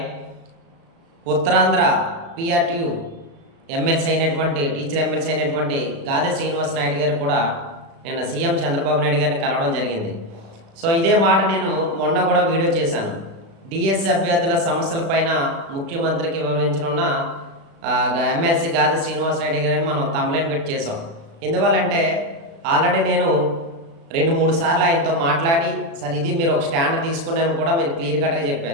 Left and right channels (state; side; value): late; left; 36 ms